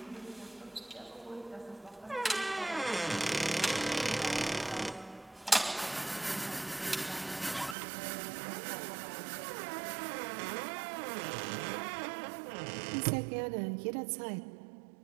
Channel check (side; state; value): left; drops out; at 7.8 s